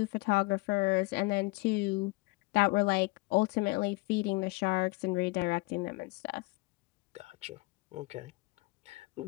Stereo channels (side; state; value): right; quieter; 24.1 dB